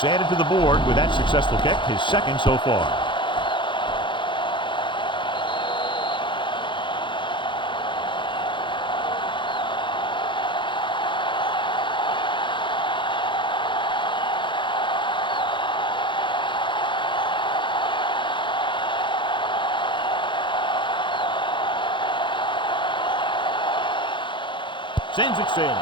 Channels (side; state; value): right; late; 0.23 ms